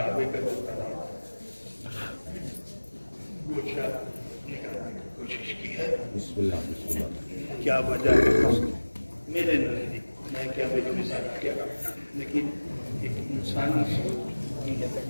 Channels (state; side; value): inverted; both; correlation -1.00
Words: کا جو طواف کچھ نکالنے کی کوشش کی ہے. کیا وجہ ہے میرے نزدیک، میں کیا میری مثال کیا، لیکن ایک انسانی سوچ